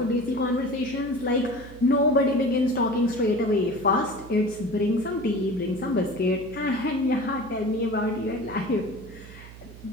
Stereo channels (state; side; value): noise; right; hum, 17 dB below the sound